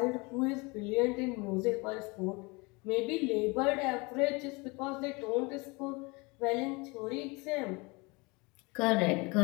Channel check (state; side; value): quieter; right; 26.9 dB